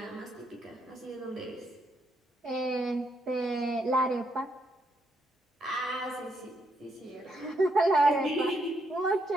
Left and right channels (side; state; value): both; normal; correlation 0.77